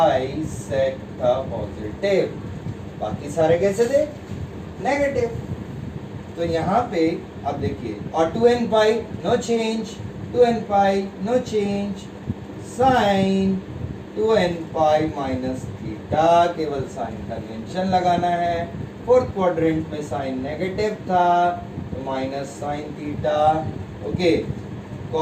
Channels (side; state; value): both; identical; correlation 1.00